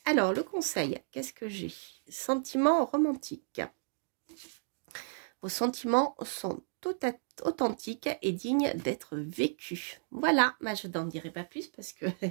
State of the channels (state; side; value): silent; left; digital silence